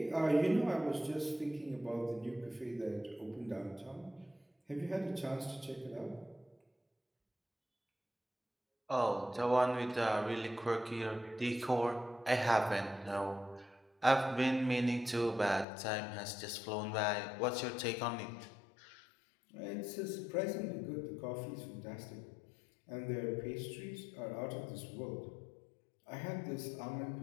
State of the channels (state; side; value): drops out; right; at 15.7 s